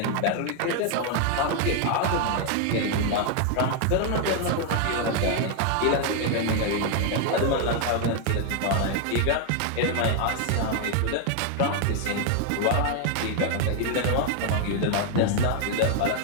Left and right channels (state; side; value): different; both; correlation 0.00